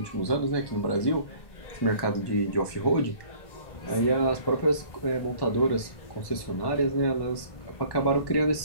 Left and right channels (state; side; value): late; right; 1.1 ms